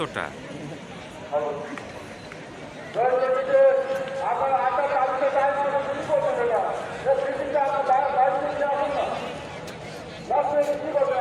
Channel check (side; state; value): both; identical; correlation 1.00